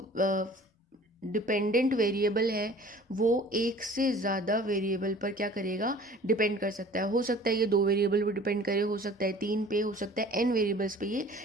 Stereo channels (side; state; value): both; normal; correlation 0.48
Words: डिपेंडेंट वेरिएबल है वो एक से ज़्यादा वेरिएबल पर क्या करेगा, डिपेंड कर सकता है। हो सकता है ये दो वेरिएबल पर डिपेंड करे, हो सकता है तीन पे, हो सकता है एन वेरिएबल्स पे ये